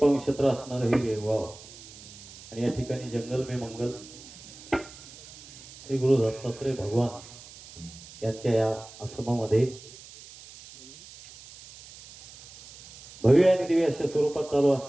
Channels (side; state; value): right; noise; hiss, 18 dB below the sound